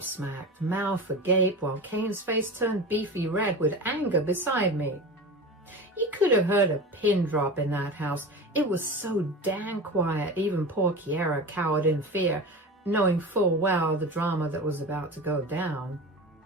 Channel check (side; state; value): both; normal; correlation 0.29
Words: mouth agape, while Kane's face turned beefy red with anger beside me. You could have heard a pin drop in that house. It was so damn quiet, even poor Kiera cowered in fear. knowing full well the drama that was about to go down.